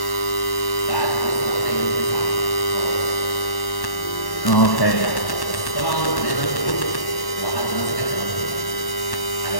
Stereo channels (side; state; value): right; late; 1.1 ms